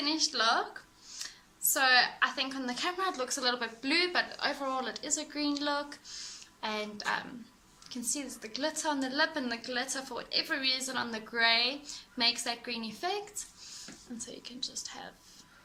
look. So I think on the camera it looks a little bit blue, but overall it is a green look. And you can see there's the glitter on the lip, and the glitter, for whatever reason, on the grey makes that green effect. And so you can just have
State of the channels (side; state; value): both; identical; correlation 1.00